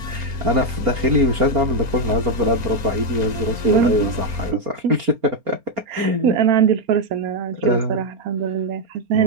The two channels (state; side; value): late; left; 4.3 ms